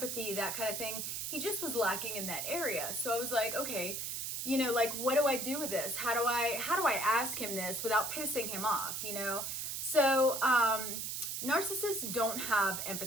that kind of thing, he just was lacking in that area. So I was like, okay, you know, like, what do I do with this? How do I ask him this without pissing him off, you know? So, narcissists don't have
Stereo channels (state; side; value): noise; right; hiss, 3 dB below the sound